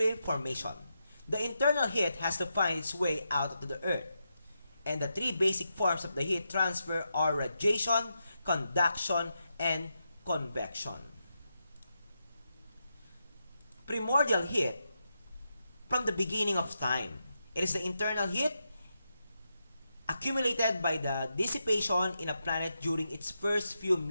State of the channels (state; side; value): inverted; both; correlation -0.86